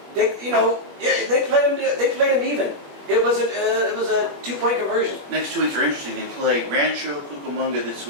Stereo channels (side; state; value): left; late; 21 ms